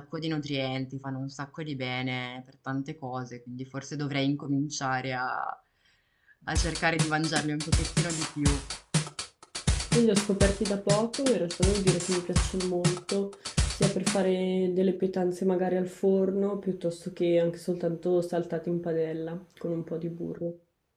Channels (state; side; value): identical; both; correlation 1.00